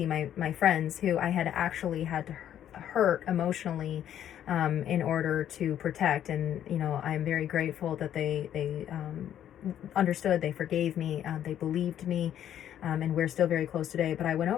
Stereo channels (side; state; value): right; quieter; 10.6 dB